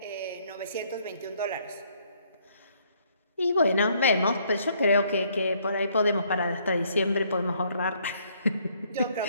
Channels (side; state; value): both; inverted; correlation -0.67